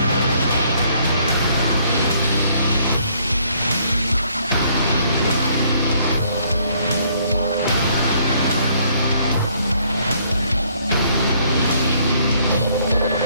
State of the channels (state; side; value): inverted; both; correlation -0.65